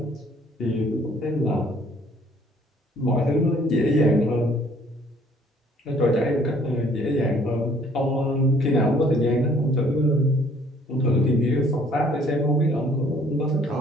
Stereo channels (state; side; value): normal; both; correlation 0.59